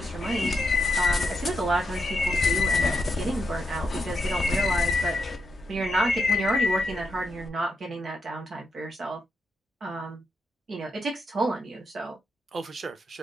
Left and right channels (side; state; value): both; normal; correlation 0.83